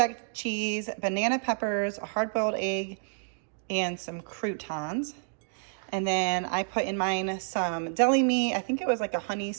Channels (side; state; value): left; silent; digital silence